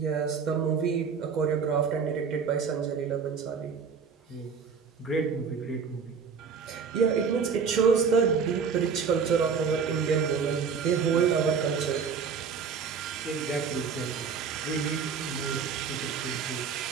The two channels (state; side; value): quieter; left; 6.0 dB